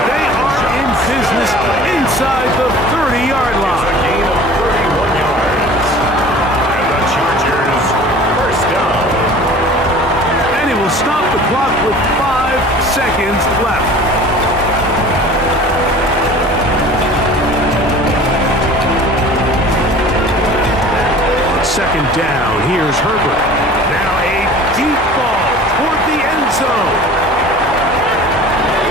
they are in business inside the 30-yard line. A gain of 31 yards. And the Chargers first down. And he will stop the clock with 5 seconds left. 2nd down, here's Herbert. Now a deep ball toward the end zone.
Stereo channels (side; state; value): both; normal; correlation 0.44